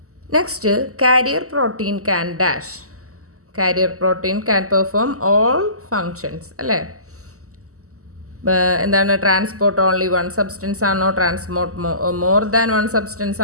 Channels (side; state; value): left; late; 0.65 ms